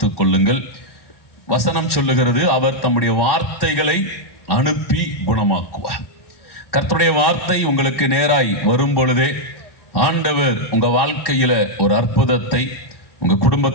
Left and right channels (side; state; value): right; late; 1.1 ms